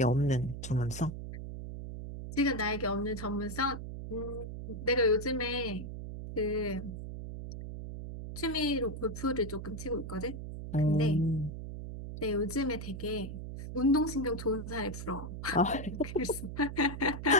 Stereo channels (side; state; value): right; noise; hum, 8 dB below the sound